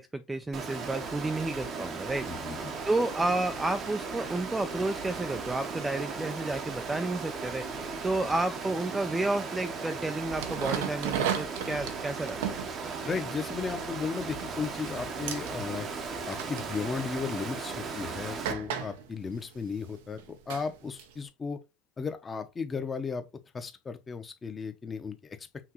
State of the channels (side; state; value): both; normal; correlation 0.72